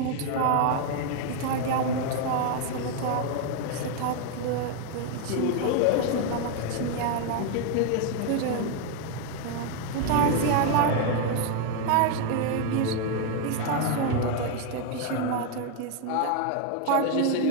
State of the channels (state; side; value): different; both; correlation 0.01